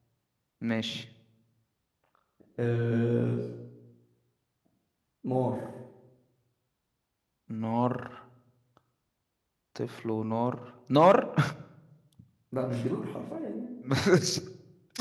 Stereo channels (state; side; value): identical; both; correlation 1.00